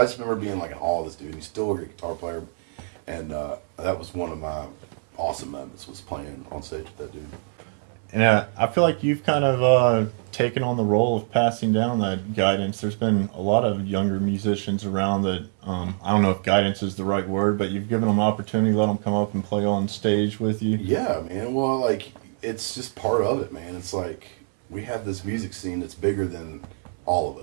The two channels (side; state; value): left; silent; 59 dB below the other